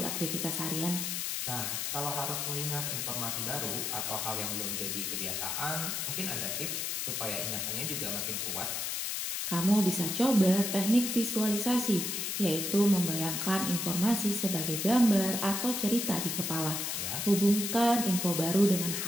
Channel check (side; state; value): left; noise; hiss, 2 dB below the sound